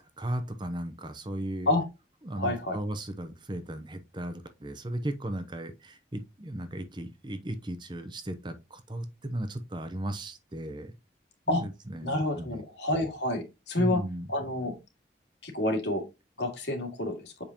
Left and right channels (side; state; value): both; normal; correlation 0.33